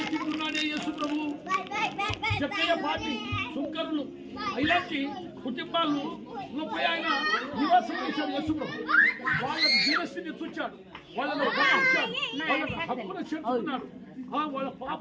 తింటున్నాడే యేసు ప్రభు. చెప్పే పార్టీ సుంకరులు ఇలాంటి కుటుంబాలు పోయి ఆయన నివాసం చేశాడు యేసు ప్రభు. వాళ్ళ జీవస్థితిని చూచాడు, వాళ్ళను గమనించాడు, వాళ్ళ హక్కును చేర్చుకున్నాడు, వాళ్ళ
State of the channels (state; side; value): identical; both; correlation 1.00